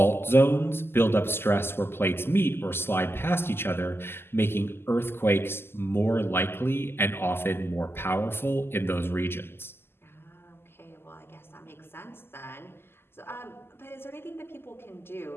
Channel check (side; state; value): right; late; 0.12 ms